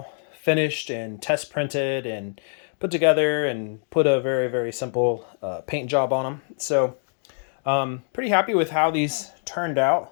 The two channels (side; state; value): right; silent; 55 dB below the other